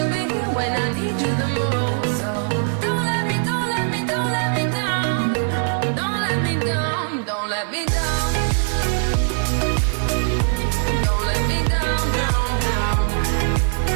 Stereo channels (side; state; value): left; silent; 58 dB below the other